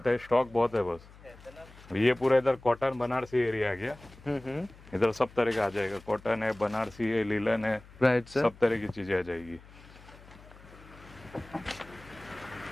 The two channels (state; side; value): noise; left; hum, 21 dB below the sound